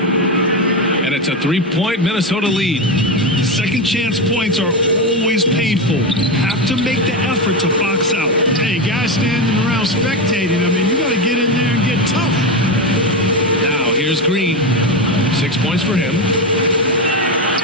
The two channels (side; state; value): both; normal; correlation 0.14